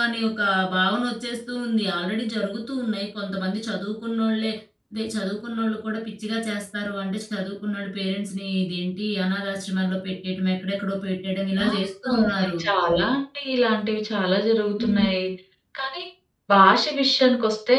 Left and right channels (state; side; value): identical; both; correlation 1.00